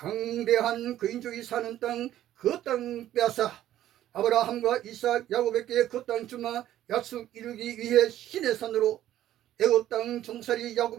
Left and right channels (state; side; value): quieter; left; 12.7 dB